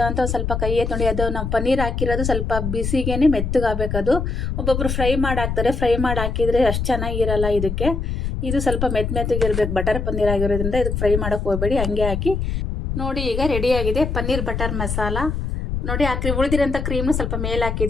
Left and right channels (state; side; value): noise; left; rumble, 2 dB below the sound